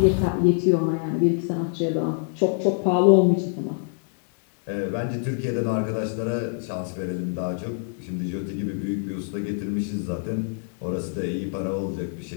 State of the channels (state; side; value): silent; right; 62 dB below the other